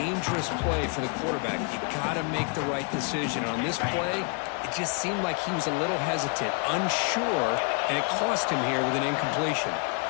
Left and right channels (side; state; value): right; quieter; 36.5 dB